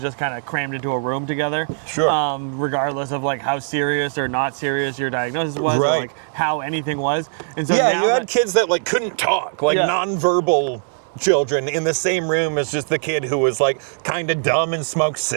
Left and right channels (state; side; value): silent; left; digital silence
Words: just kind of crammed into a room together. Sure. Regardless of like how serious or not serious your diagnosis was, Right. or like how anything was. And so Yeah, now you had kids that like couldn't talk, like Yeah. nonverbal children in the same room as just the kid who was like kind of dumb and smoked